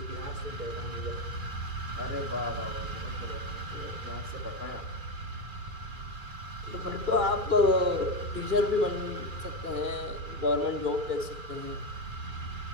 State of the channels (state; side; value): late; left; 2.4 ms